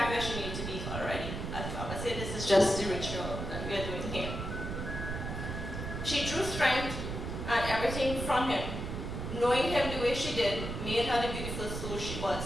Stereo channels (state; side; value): noise; right; rumble, 5 dB below the sound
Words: where she needs to be already. As Barbara said, this is just the ritual that we are doing here. She drew strength and everything from him. Knowing him the way she did made her the beautiful soul she